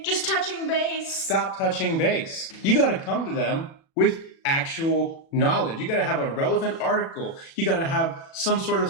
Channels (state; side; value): late; right; 36 ms